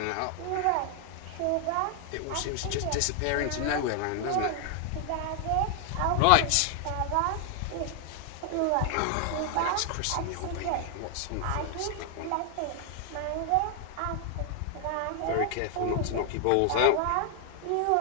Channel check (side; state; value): both; different; correlation 0.00